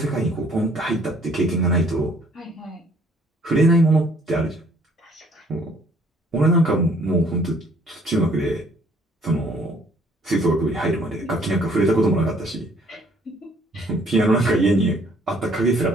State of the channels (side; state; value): both; normal; correlation 0.61